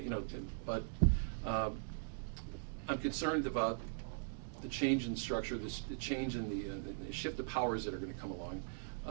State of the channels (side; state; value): left; silent; digital silence